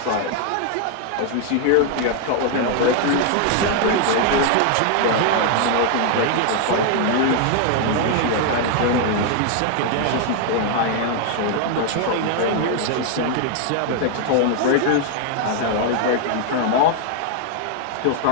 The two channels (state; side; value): different; both; correlation 0.00